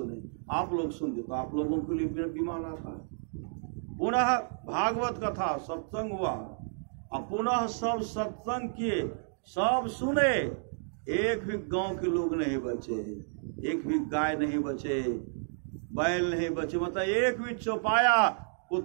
आप लोग सुनते तो आप लोगों के लिए विमान आता। पुनः भागवत कथा सत्संग हुआ, अब पुनः सब सत्संग किए, सब सुने, एक भी गांव के लोग नहीं बचे, एक भी गाय नहीं बचे, बैल नहीं बचे, मतलब एक भी चौपाया,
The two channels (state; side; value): silent; left; digital silence